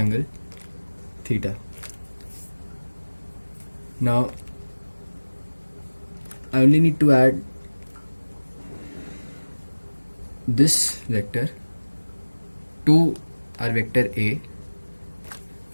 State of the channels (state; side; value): inverted; both; correlation -1.00